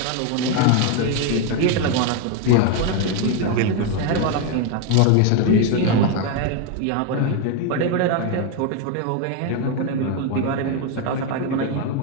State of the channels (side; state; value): both; different; correlation 0.01